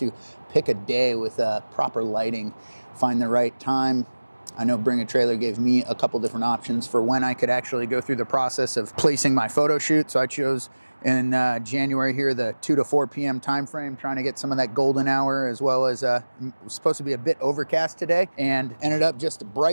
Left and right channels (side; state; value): both; inverted; correlation -1.00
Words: pick a day with proper lighting. Find the right time. I know Bring a Trailer gave me a couple different options for when I could actually go through the process of placing my photo shoot. So I chose in January here, the 2 to 4 p.m. time frame, trying to get some of that golden hour, as well as it was supposed to be a bit overcast today, and ended up just